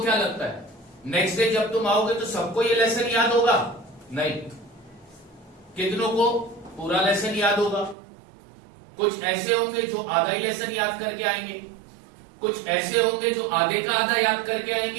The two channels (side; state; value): left; drops out; at 8.0 s